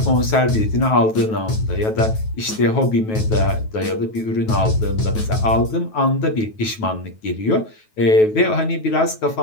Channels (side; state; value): right; late; 9.2 ms